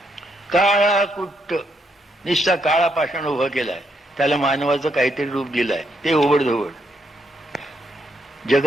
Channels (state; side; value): normal; both; correlation 0.77